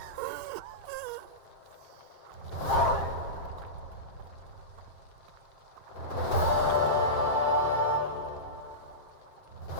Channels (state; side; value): late; right; 7.6 ms